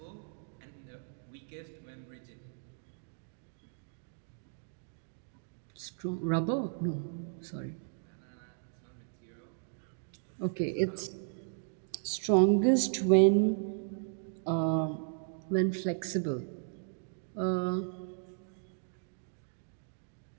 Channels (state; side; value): silent; left; digital silence